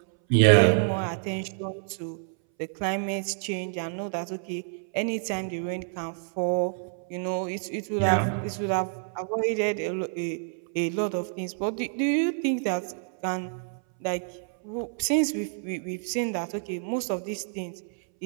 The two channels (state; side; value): silent; left; 59 dB below the other